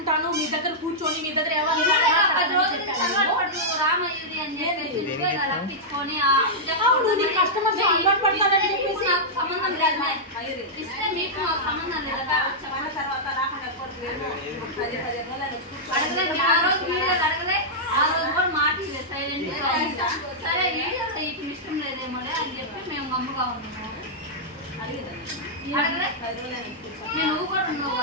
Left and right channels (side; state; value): both; normal; correlation -0.09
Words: మీ దగ్గర కూర్చొని మీ దగ్గర రామయ్యది అని చెప్పేసి రప్పించుకొని కస్టమర్స్ అలవాటు పడతారని చెప్పేసి నాకు సంబంధం లేదు ఇస్తే మీకు మాకు సంబంధం లేదు తర్వాత రాకుండా అడగలే ఆ రోజు వీడియోలు అడగలే ఆ రోజు కూడా మాట సైలెంట్ సరే వీడియోలో ఇప్పుడు ఇష్టం లేదేమో అని చెప్పి మేము గమ్ముగా ఉన్నాము నువ్వు కూడా